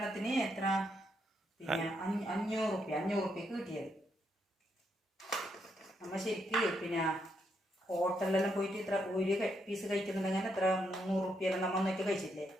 എത്ര 500 റുപ്യക്ക് കിട്ടിയത്. നമ്മ ശരിക്ക് പിന്നെ ഹോട്ടലിലെല്ലാം പോയിട്ട് ഇത്ര ഒരു പീസ് കഴിക്കുന്നുണ്ടെങ്കിൽ എത്ര 300 റുപ്യെല്ലാം നമ്മൾ ഒന്നൊക്കെ കഴിച്ചില്ലേ.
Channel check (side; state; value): both; normal; correlation 0.78